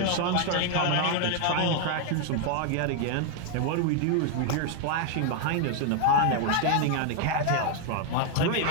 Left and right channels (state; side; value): different; both; correlation 0.00